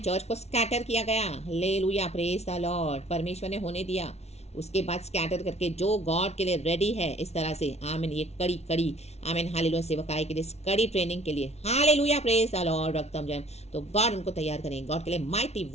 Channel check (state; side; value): late; right; 0.31 ms